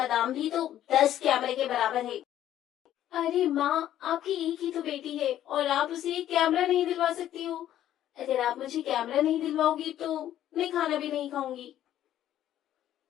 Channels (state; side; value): quieter; right; 12.0 dB